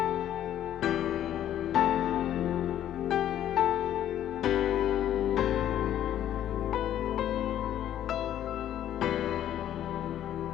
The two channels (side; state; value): right; quieter; 11.4 dB